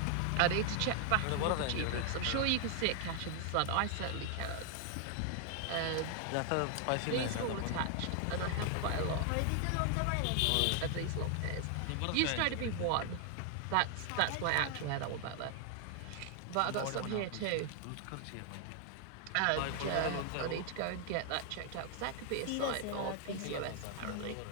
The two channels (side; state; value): both; different; correlation 0.00